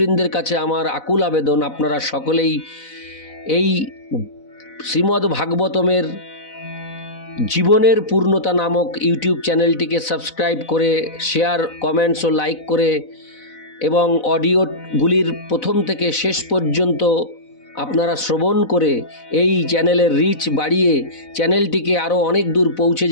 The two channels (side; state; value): right; late; 4.0 ms